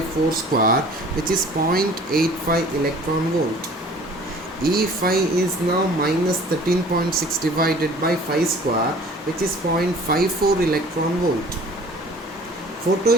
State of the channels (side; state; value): both; normal; correlation 0.49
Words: 4 square, which is 0.85 electron volt. E5 is now minus 13.6 divided by 5 square, which is 0.54 electron volt.